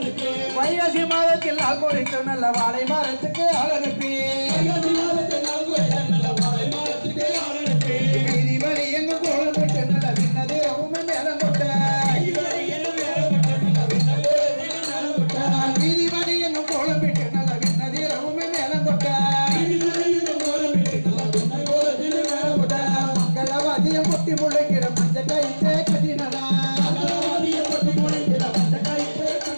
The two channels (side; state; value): both; inverted; correlation -1.00